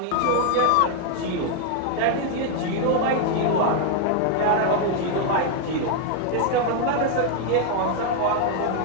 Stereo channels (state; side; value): different; both; correlation 0.00